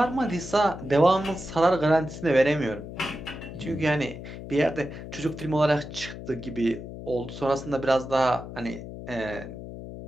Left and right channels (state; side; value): noise; left; hum, 11 dB below the sound